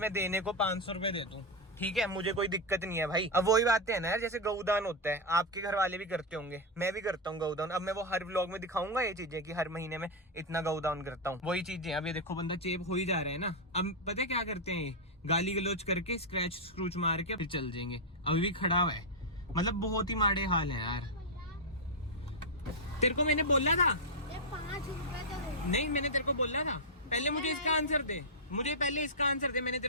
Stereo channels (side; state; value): both; normal; correlation -0.01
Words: देने को 500 रुपए दे दूं, ठीक है, मुझे कोई दिक्कत नहीं है भाई। अब वही बातें है ना यार, जैसे गौदान होता है, आपके घर वाले भी करते होंगे, मैं भी करता हूँ गौदान। अब मैं वो हर व्लॉग में दिखाऊंगा ये चीजें कि हर महीने में इतना गौदान करता हूँ, वही चीजें। अब ये देखो बंदा चेप हो ही जा रहा है ना। अब पता है क्या करते हैं, गाली गलोच करके स्क्रैच स्क्रूच मार के फिर चल जाएंगे। अभी भी खड़ा हुआ है, मतलब बहुत ही माड़े हाल है यार। तेरे को मैंने बोला था 5 रुपए तो दे। नहीं, मैंने तेरे को बोला था, पहले मुझे इसका आंसर दे, मुझे पहले इसका आंसर दे। मैंने